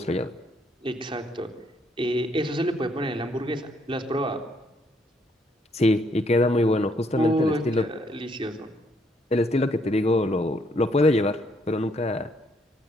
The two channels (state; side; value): normal; both; correlation 0.70